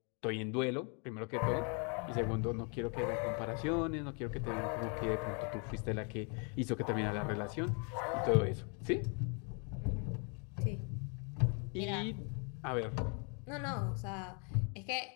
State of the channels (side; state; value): right; quieter; 37.1 dB